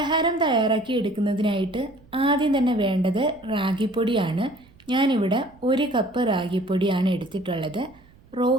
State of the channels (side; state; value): right; noise; rumble, 28 dB below the sound